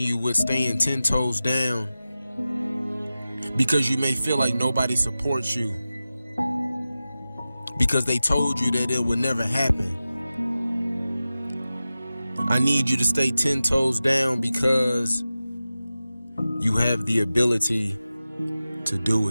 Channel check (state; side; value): inverted; both; correlation -0.95